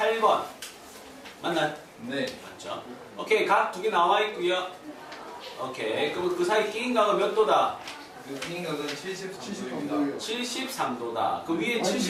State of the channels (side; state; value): both; identical; correlation 1.00